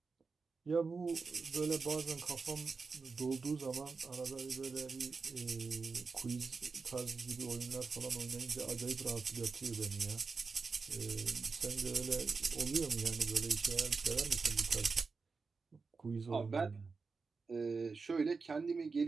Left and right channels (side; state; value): left; quieter; 4.6 dB